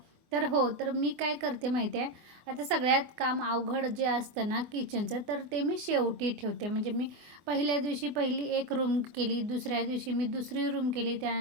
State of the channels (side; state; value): left; late; 24 ms